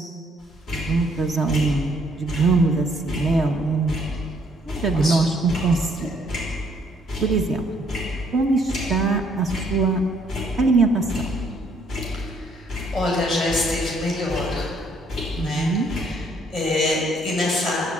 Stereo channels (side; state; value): both; normal; correlation 0.66